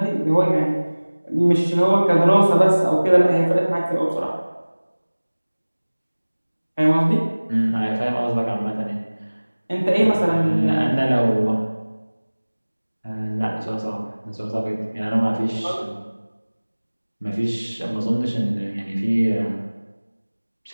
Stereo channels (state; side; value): inverted; both; correlation -1.00